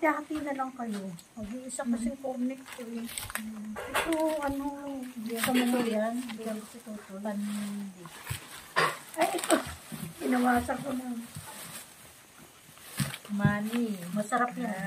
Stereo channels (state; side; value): identical; both; correlation 1.00